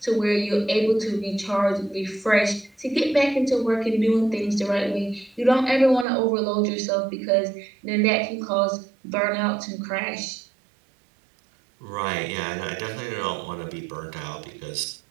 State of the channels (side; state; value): left; drops out; at 6.1 s